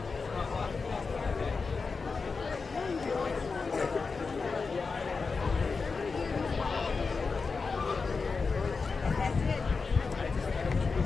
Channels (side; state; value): right; quieter; 4.6 dB